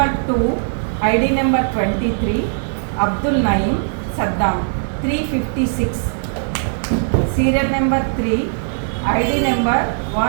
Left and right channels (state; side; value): silent; left; 57 dB below the other